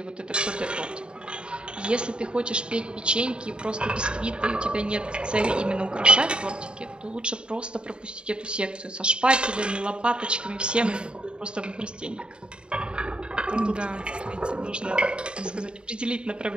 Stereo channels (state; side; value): late; left; 0.052 ms